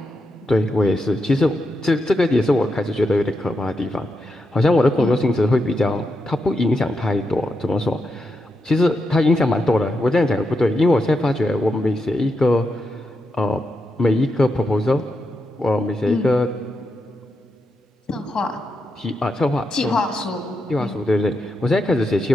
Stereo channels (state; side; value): normal; both; correlation 0.85